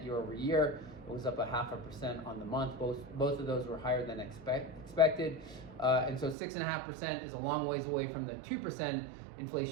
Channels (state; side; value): drops out; left; at 6.4 s